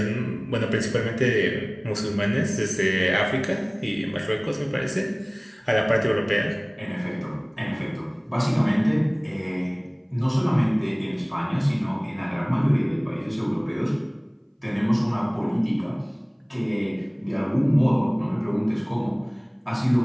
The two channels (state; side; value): identical; both; correlation 1.00